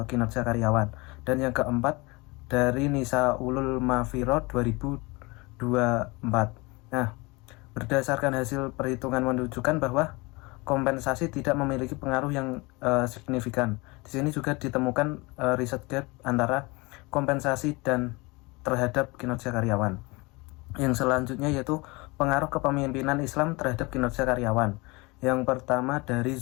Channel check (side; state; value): right; quieter; 25.4 dB